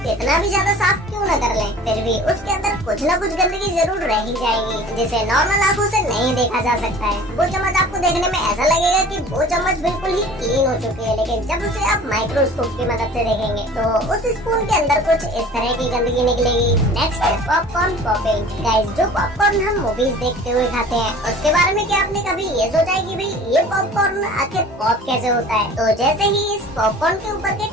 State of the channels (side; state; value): both; normal; correlation 0.44